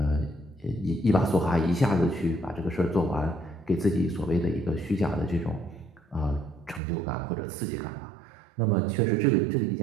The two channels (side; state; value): left; drops out; at 6.8 s